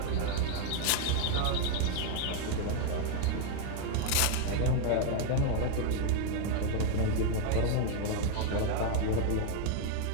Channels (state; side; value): different; both; correlation 0.00